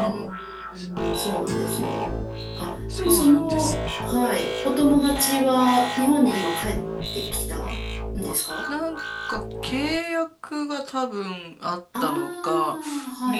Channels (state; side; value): identical; both; correlation 1.00